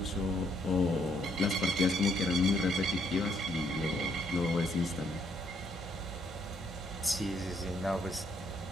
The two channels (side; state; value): both; normal; correlation 0.70